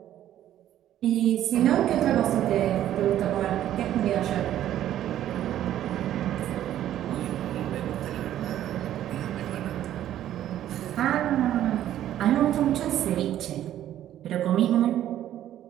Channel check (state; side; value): quieter; left; 12.0 dB